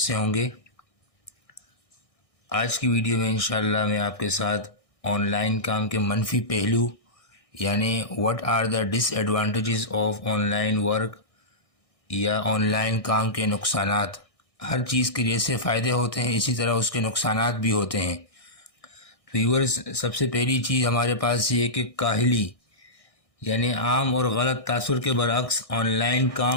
ہوں گے۔ آج کی ویڈیو میں انشاءاللہ میں آپ کے ساتھ آن لائن کام کے منفی پہلو یعنی what are the dish advantages of on line work یا آن لائن کام کے نقصانات۔ ہر چیز کے جیسے فائدے ہوتے ہیں اسی طرح اس کے نقصانات بھی ہوتے ہیں۔ ویورز، سب سے پہلی چیز ہمارے پاس یہ ہے کہ کاہلی یعنی عام اور غلط تاثر کے برعکس آن لائن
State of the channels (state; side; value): late; right; 1.6 ms